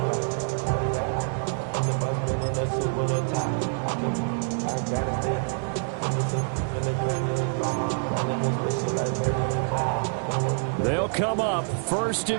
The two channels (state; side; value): silent; left; 59 dB below the other